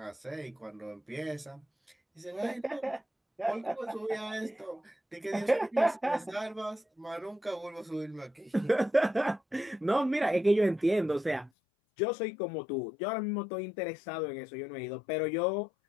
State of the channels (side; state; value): right; drops out; at 11.5 s